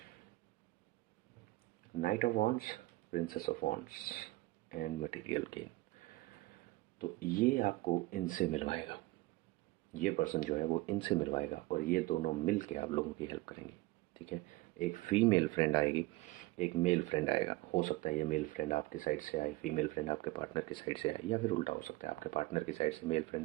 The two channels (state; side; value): quieter; left; 20.3 dB